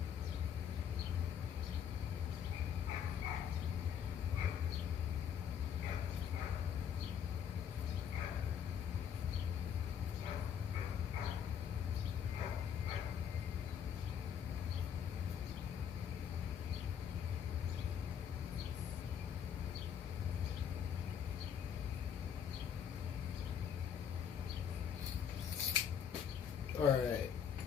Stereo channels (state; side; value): quieter; right; 8.2 dB